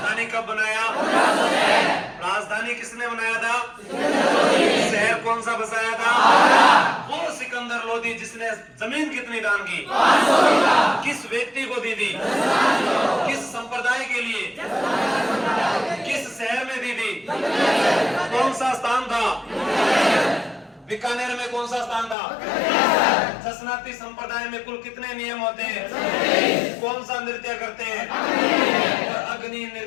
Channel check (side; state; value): right; drops out; at 22.2 s